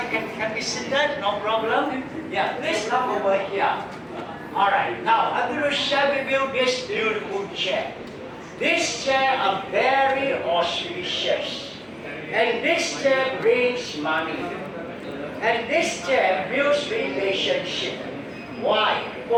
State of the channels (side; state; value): both; identical; correlation 1.00